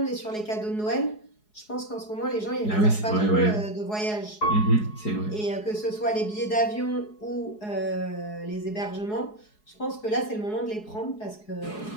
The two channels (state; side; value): late; right; 4.7 ms